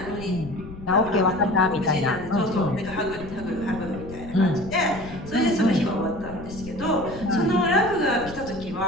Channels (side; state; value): left; noise; rumble, 14 dB below the sound